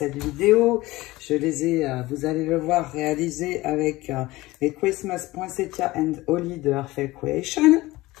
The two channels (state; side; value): quieter; right; 19.2 dB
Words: vidéo. Je les ai, vous allez le voir, réalisés avec les Christmas Poinsettia and Holly de Earthfell Creation.